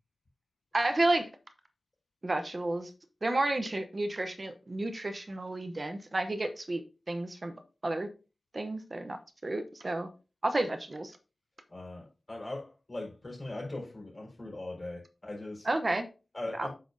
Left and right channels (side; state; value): both; normal; correlation 0.97